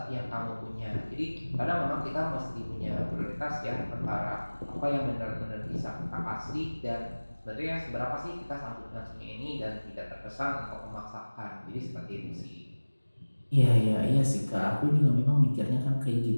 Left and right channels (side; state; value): both; inverted; correlation -1.00